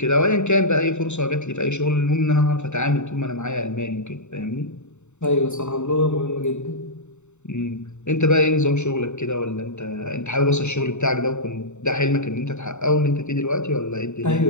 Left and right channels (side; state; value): right; late; 0.83 ms